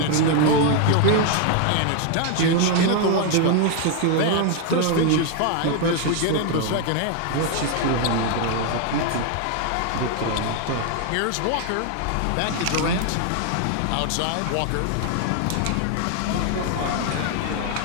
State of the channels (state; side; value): different; both; correlation 0.00